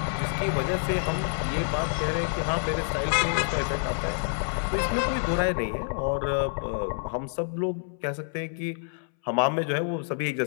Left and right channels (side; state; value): right; silent; 60 dB below the other